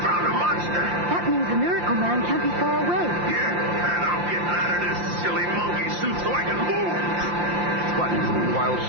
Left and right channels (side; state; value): left; late; 5.7 ms